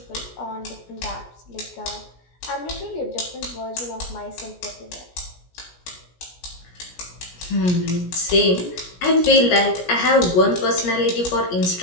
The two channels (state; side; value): late; right; 17 ms